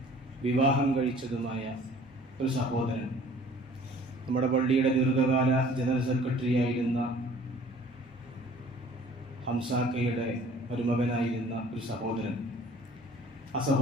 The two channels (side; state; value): both; normal; correlation 0.52